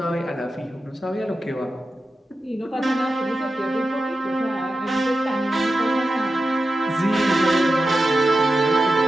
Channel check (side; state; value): both; normal; correlation 0.91